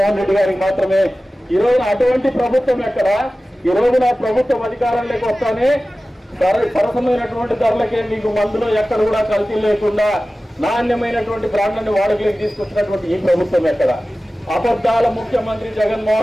రెడ్డి గారికి మాత్రమే. ఈ రోజున అటువంటి ప్రభుత్వం ఎక్కడ? ఈ రోజున ప్రభుత్వం అధికారంలోకి వస్తానే సరసమైనటువంటి ధరలకే మీకు మందులో ఎక్కడ కూడా కల్తీ లేకుండా నాణ్యమైనటువంటి బ్రాండ్లను వాడుకలోకి తీసుకొచ్చినటువంటి ఈ ప్రభుత్వం ఎక్కడ? అబద్ధాల ముఖ్యమంత్రి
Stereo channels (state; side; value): normal; both; correlation 0.96